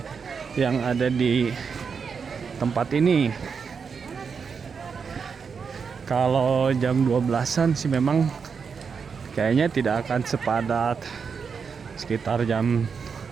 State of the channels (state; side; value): quieter; left; 5.9 dB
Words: yang ada di tempat ini. Kalau jam 12-an sih memang kayaknya tidak akan sepadat sekitar jam